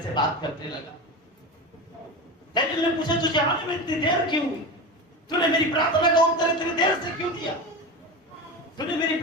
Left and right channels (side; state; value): both; normal; correlation 0.24